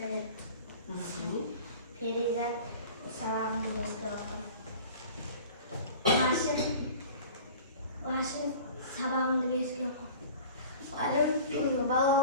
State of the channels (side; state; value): both; inverted; correlation -0.41